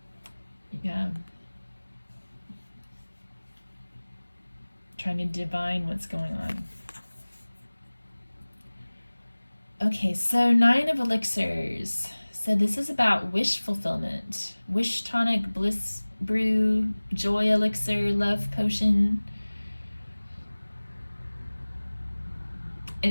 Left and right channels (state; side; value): inverted; both; correlation -1.00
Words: Yeah. Trying to divine what's going on. Okay, so 9 of Elixirs. So this is about wish fulfillment. Wish tonic, bliss brew, joy elixir, love potion.